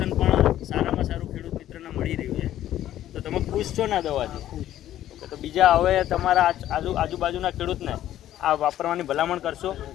પણ સારામાં સારું ખેડૂત મિત્રને મળી રહ્યું છે. તો તમે ખુશ છો ને દવાથી? તો બીજા હવે તમારા આજુબાજુના ખેડૂતને આ વાપરવાની ભલામણ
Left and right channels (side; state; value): right; quieter; 12.6 dB